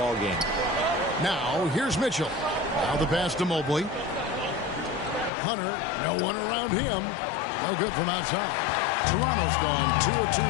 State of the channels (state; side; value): drops out; right; at 5.3 s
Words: game. Now, here's Mitchell. Now the pass to Mobley. Hunter, no one around him. No good from outside. Toronto's gone 2 of 2